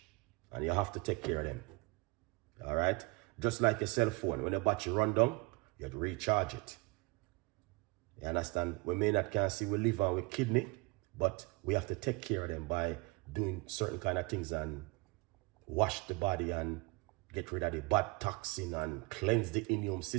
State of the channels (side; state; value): left; quieter; 26.5 dB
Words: And you have to take care of them. All right? Just like your cell phone. When the battery run down, you have to recharge it. You understand? We may not can see with liver and with kidney, but we have to take care of them by doing certain kind of things and wash the body and get rid of the bad toxin and cleanse the immune